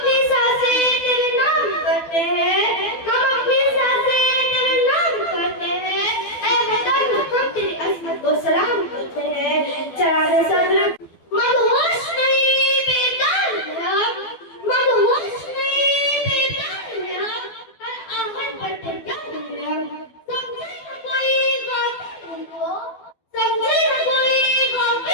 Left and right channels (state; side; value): late; right; 12 ms